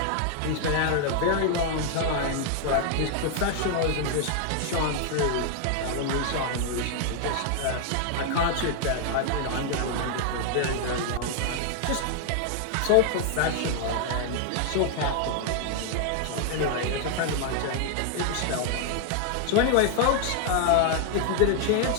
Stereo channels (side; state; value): both; different; correlation 0.00